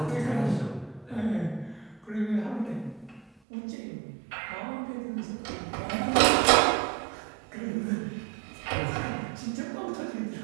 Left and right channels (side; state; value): left; drops out; at 3.3 s